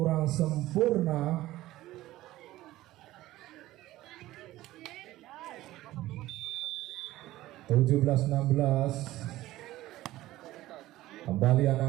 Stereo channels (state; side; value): quieter; left; 16.2 dB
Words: sempurna. Tujuh 16 kembali